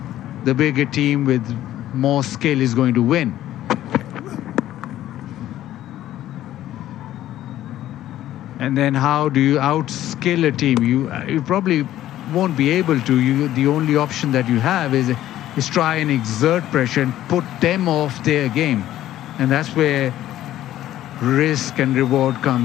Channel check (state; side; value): quieter; right; 13.2 dB